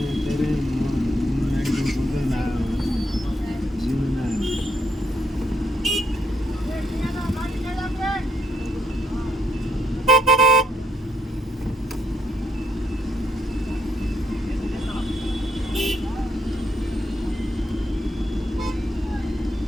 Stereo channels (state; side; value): normal; both; correlation 0.74